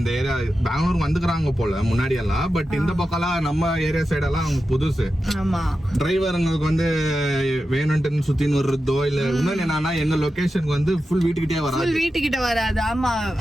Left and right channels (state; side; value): normal; both; correlation 0.91